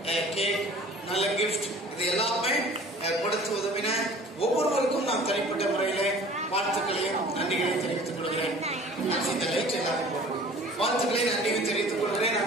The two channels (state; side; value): normal; both; correlation 0.47